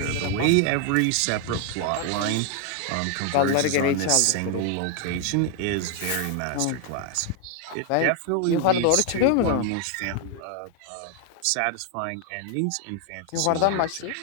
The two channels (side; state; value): both; different; correlation 0.00